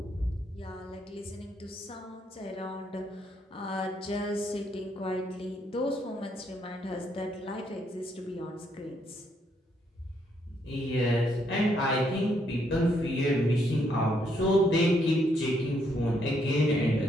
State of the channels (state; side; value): normal; both; correlation 0.73